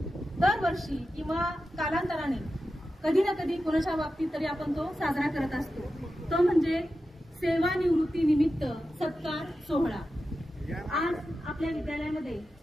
दरवर्षी किंवा कालांतराने कधी ना कधी कोणाच्या बाबतीत तरी आपण तो साजरा करत असतो। तो म्हणजे सेवानिवृत्ती निमित्त सत्कार सोहळा। आज आपल्या विद्यालयामध्ये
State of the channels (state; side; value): normal; both; correlation 0.91